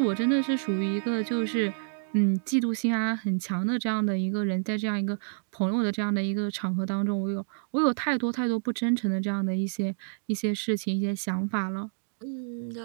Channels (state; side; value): silent; left; digital silence